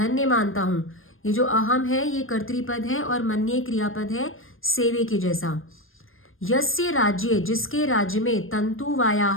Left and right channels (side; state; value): right; late; 0.59 ms